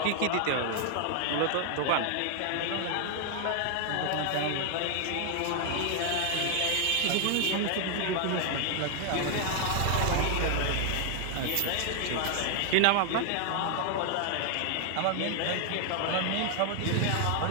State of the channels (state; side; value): different; both; correlation 0.00